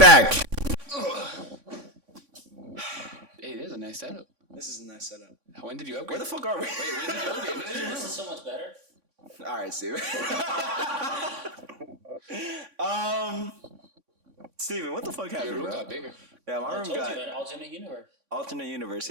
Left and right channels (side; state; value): left; late; 3.6 ms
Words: Hey, there's a nice setup. This is a nice setup. When did you upgrade? Where the fuck are we? Wait, when did you upgrade? This is so much better. All right, Steven. Steven, what the fuck Your happened, room bro? got bigger. Yeah, my room got an alternate universe. alternate universe.